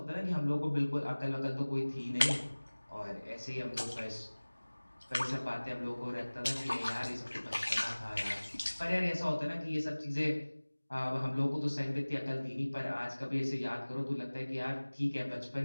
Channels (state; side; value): inverted; both; correlation -1.00